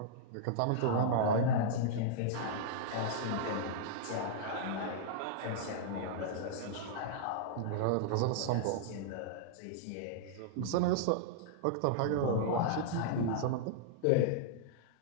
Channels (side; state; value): both; different; correlation -0.02